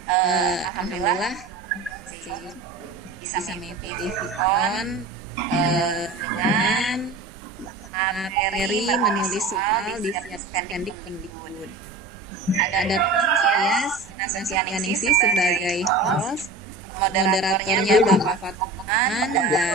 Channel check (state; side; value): quieter; left; 3.3 dB